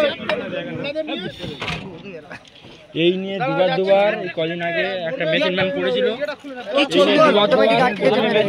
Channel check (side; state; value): both; identical; correlation 1.00